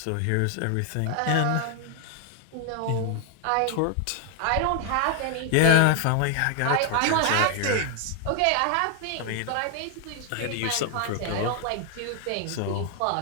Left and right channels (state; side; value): different; both; correlation 0.00